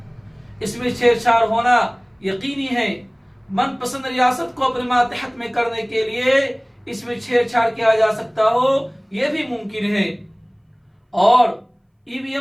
इसमें छेड़छाड़ होना यकीनी है। मनपसंद रियासत को अपने मातहत में करने के लिए इसमें छेड़छाड़ किया जा सकता हो, यह भी मुमकिन है। और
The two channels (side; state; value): both; identical; correlation 1.00